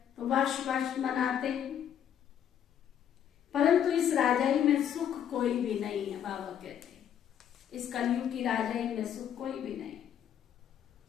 तो वर्ष वर्ष मनाते हैं। परंतु इस राजाई में सुख कोई भी नहीं है। बाबा कहते हैं इस कलयुग की राजाई में सुख कोई भी नहीं।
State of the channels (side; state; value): right; quieter; 9.4 dB